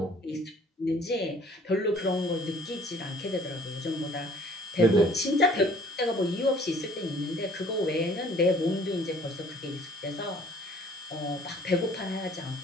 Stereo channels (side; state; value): both; normal; correlation 0.54